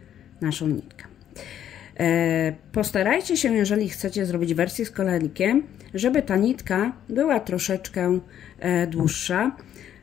naszą nitkę. Postarajcie się, jeżeli chcecie zrobić wersję z koralikiem, żeby ta nitka była troszeczkę dłuższa,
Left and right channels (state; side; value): quieter; right; 10.4 dB